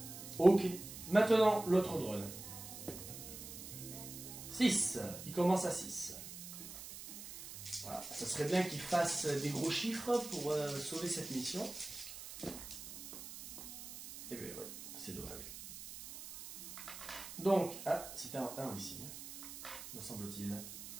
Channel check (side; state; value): right; noise; hiss, 11 dB below the sound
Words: Ok, maintenant l'autre drone. 6, il commence à 6. Voilà, ça serait bien qu'il fasse des gros chiffres pour sauver cette mission. Et bien ouais, c'est dommage. Donc, ah, c'était un 1 ici, me semble-t-il.